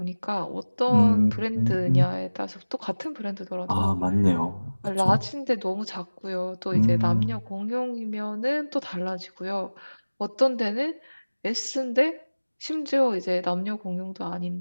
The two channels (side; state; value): both; inverted; correlation -1.00